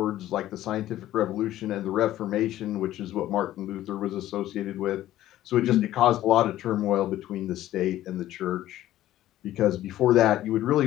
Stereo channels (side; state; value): right; quieter; 13.9 dB